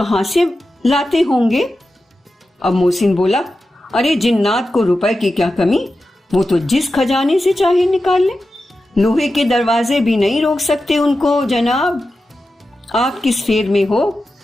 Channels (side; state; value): both; normal; correlation 0.92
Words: से लाते होंगे? अब मोहसिन बोला, अरे जिन्नात को रुपए की क्या कमी, वो तो जिस खजाने से चाहे निकाल ले, लोहे के दरवाजे भी नहीं रोक सकते उनको। जनाब, आप किस फेर में हो?